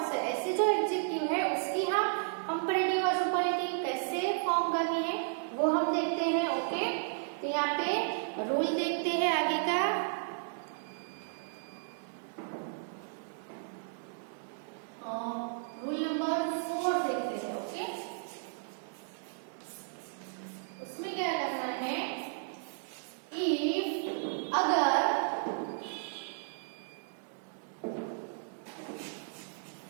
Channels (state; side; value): silent; left; digital silence